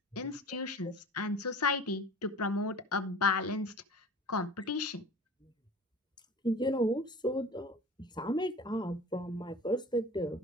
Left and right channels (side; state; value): both; normal; correlation 0.40